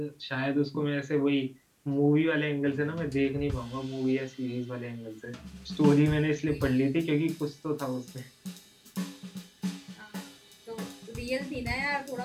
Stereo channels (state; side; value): identical; both; correlation 1.00